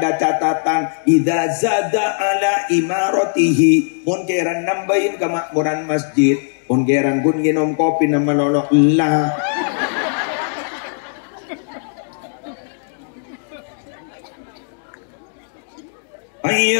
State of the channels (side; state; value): right; silent; digital silence